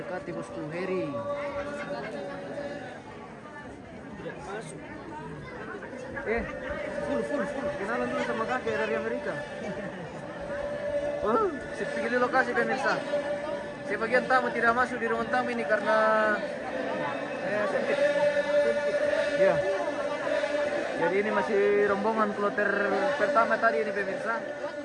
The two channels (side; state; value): both; identical; correlation 1.00